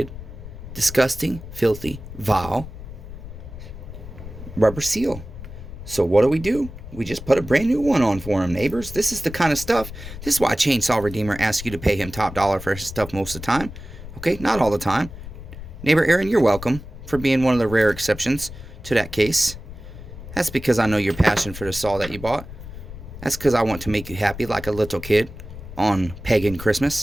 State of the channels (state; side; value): noise; left; rumble, 12 dB below the sound